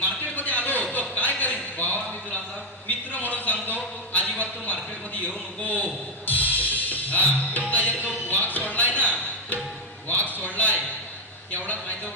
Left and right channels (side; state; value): both; normal; correlation 0.07